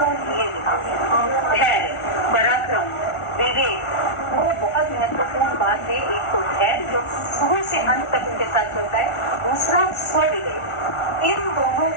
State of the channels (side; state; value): right; late; 1.4 ms